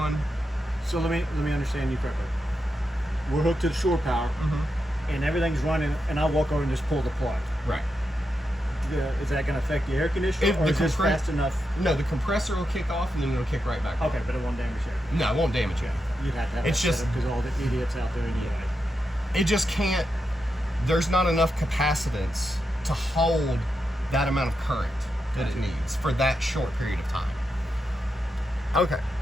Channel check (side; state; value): both; normal; correlation 0.86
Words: So let me understand you correctly. We're hooked to the shore power, and everything's running, and I walk over and just pull the plug. Right. Is that going to affect the air conditioner, or is this fast enough? No, the compressor will kick off and then it'll kick right back on. Okay, but it won't damage it. No, it won't damage it. You'd have to have It's that just- because all the idiots out there anyway. It just can't, there's not enough capacitance to hold that amount of current that it needs for that short period of time. Okay,